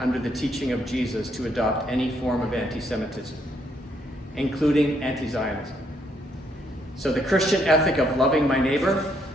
under the teaching of Jesus to adopt any form of anti-Semitism, including anti-Zionism. So the Christian ethic of loving my neighbor,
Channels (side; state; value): both; normal; correlation 0.72